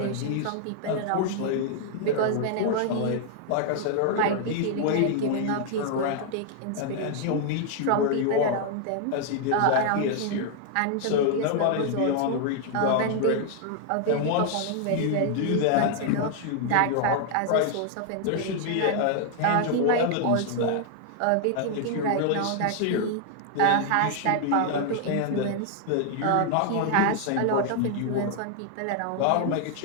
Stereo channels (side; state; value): both; different; correlation 0.00